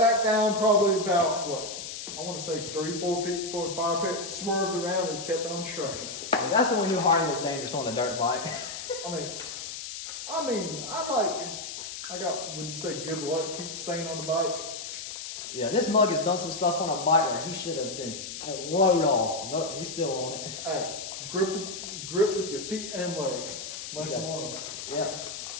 down probably about, what? I want to say 3-4 feet before the fire pit. Swerved around and just kept on trucking. And that's when we knew Harley was dangerous on a dirt bike. I got, would you say, good luck keep staying on the bike? Yeah, this mug has done some stuff on a bike where he should have been thrown off. Nope, he's still on it. Hey, grip with your feet and legs. Lesson Yeah. learned. Yeah.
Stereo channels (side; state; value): left; noise; hiss, 8 dB below the sound